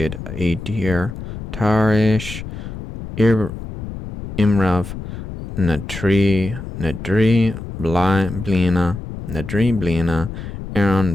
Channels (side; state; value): left; noise; rumble, 9 dB below the sound